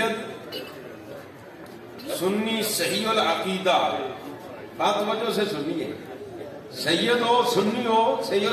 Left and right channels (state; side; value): identical; both; correlation 1.00